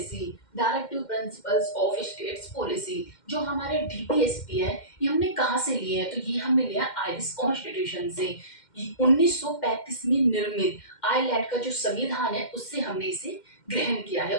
Directive principles of states policy जो हमारे डीपीएसपी है, ये हमने कहाँ से लिए हैं? तो ये हमने लिया आयरिश कॉन्स्टिट्यूशन से। 1935 में निर्मित आयरलैंड का जो संविधान है उससे हमने इसे ग्रहण किया है,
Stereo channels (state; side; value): late; right; 2.1 ms